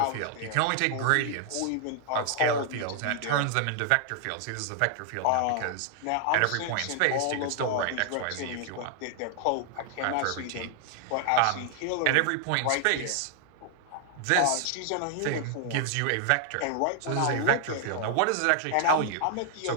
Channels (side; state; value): both; different; correlation 0.00